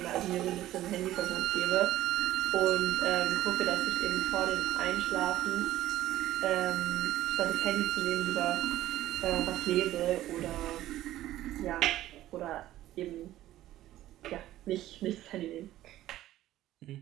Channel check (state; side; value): quieter; left; 14.3 dB